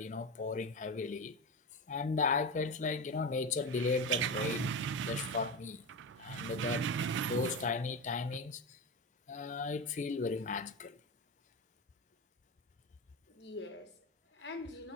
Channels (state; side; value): normal; both; correlation 0.19